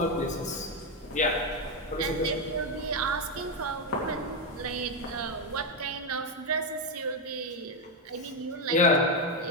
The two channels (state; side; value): normal; both; correlation 0.06